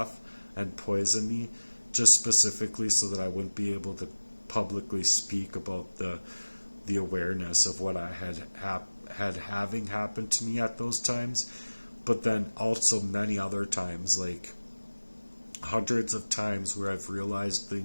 and poison me, just specifically so that I wouldn't be able to publicly speak about the awareness of what I had having happened to me at those times. But then also many other times, like hundreds of times, where I've realized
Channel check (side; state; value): both; inverted; correlation -1.00